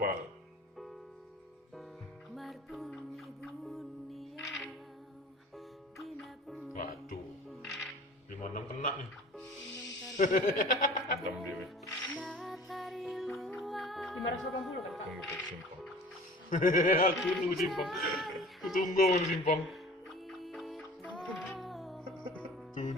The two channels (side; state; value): both; normal; correlation 0.44